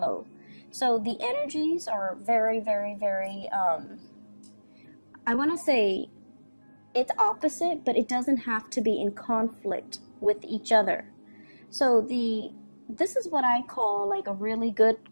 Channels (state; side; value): inverted; both; correlation -1.00